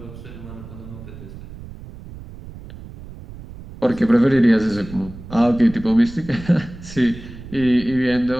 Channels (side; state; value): right; noise; rumble, 15 dB below the sound